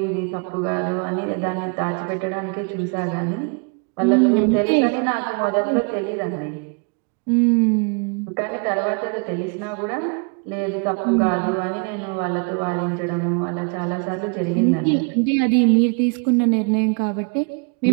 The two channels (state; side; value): quieter; left; 34.9 dB